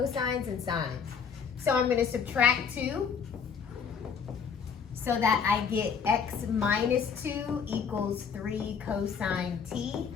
and sines. So I'm going to subtract 2 so that I get x minus 2 equals 3 cosine t.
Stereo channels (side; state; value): right; quieter; 6.5 dB